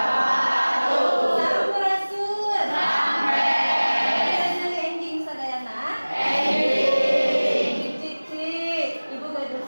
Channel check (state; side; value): inverted; both; correlation -1.00